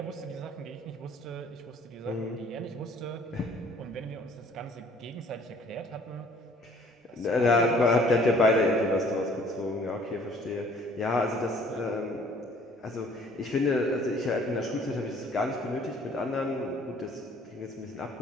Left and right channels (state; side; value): normal; both; correlation 0.56